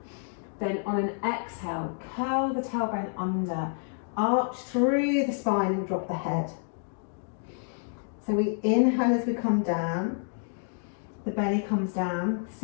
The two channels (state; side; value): silent; right; 59 dB below the other